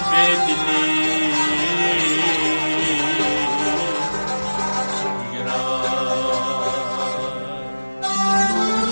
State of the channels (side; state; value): both; inverted; correlation -1.00